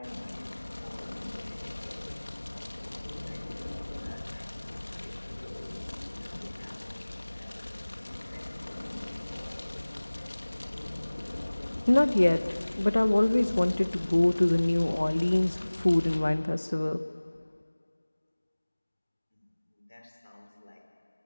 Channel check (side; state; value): both; inverted; correlation -1.00